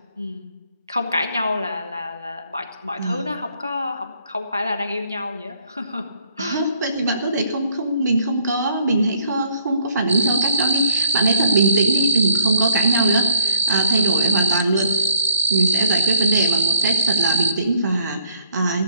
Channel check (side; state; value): both; inverted; correlation -0.66